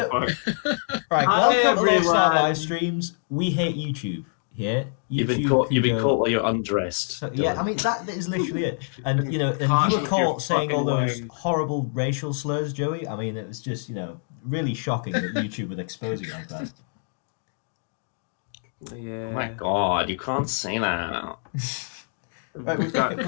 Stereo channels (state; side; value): silent; right; 62 dB below the other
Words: Right, Hi, welcome to Slarr live streams. We hate YouTube. Yeah, you've been caught while you're undressed. So, yeah, I mean that is literally it. And you were caught saying all those horrible racial slurs, Joey. I mean, it was just really shocking that YouTube would expose you like that. Yeah. Oh my god, you can't say that. Right, we've got